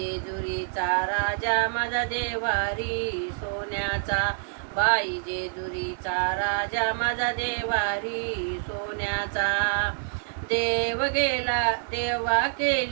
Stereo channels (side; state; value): left; silent; 60 dB below the other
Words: राजा माझा देवारी सोन्याचा. बाई जेजुरीचा राजा माझा देवारी सोन्याचा. देव गेला देवा